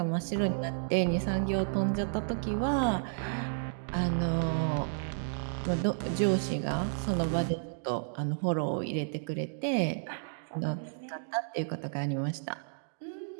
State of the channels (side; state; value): left; silent; digital silence